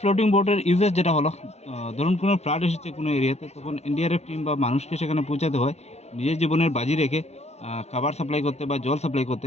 বোটের ইউজেস যেটা হলো, ধরুন কোনো ফ্লাড এসেছে কোনো এরিয়াতে, তখন এনডিআরএফ টিম বা মানুষকে সেখানে পৌঁছাতে হয় নিজের জীবনের বাজি রেখে খাবার সাপ্লাই করতে বা জল সাপ্লাই করতে।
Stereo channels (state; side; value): late; right; 0.31 ms